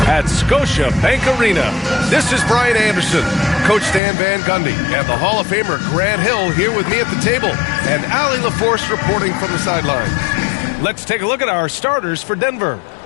at Scotiabank Arena. This is Brian Anderson, Coach Stan Van Gundy, and the Hall of Famer Grant Hill here with me at the table, and Allie LaForce reporting from the sidelines. Let's take a look at our starters for Denver.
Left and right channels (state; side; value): drops out; right; at 4.0 s